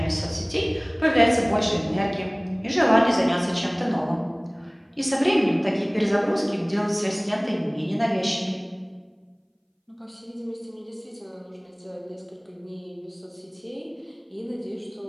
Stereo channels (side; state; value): both; identical; correlation 1.00